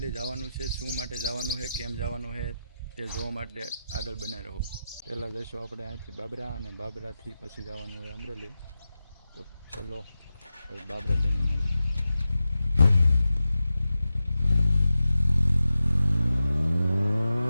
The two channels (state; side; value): inverted; both; correlation -0.91